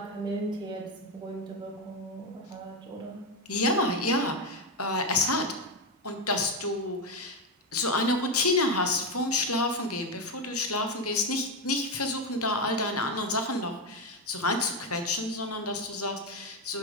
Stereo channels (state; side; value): normal; both; correlation 0.10